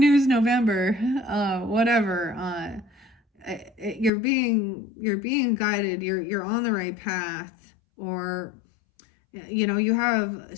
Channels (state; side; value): drops out; right; at 4.1 s